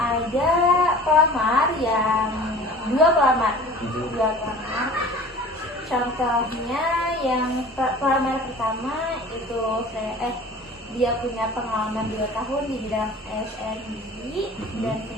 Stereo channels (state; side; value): normal; both; correlation 0.42